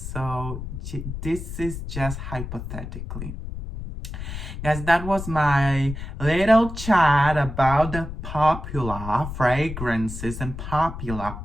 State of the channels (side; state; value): left; noise; rumble, 8 dB below the sound